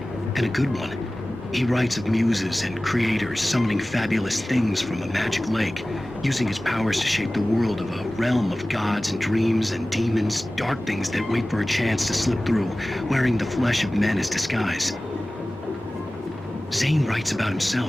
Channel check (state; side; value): normal; both; correlation 0.97